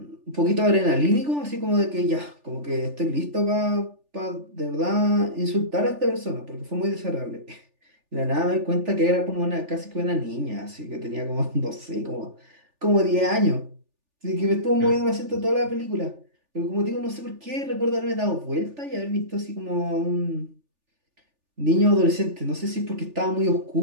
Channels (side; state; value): left; late; 3.4 ms